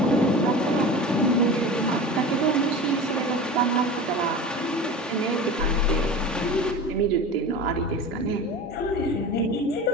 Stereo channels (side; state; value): both; normal; correlation 0.33